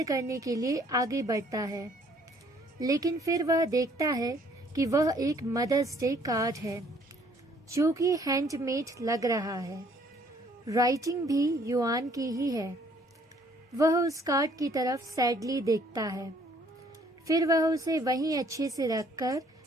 करने के लिए आगे बढ़ता है, लेकिन फिर वह देखता है कि वह एक मदर्स डे कार्ड है जो कि हैंडमेड लग रहा है। राइटिंग भी युआन की ही है। वह उस कार्ड की तरफ सैडली देखता है, फिर वह उसे वहीं अच्छे से रखकर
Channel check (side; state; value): both; normal; correlation 0.62